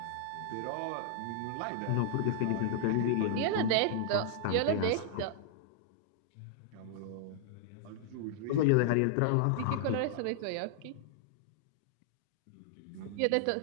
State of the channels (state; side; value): different; both; correlation -0.01